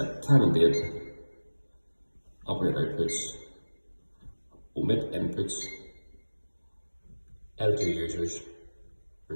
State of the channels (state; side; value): inverted; both; correlation -1.00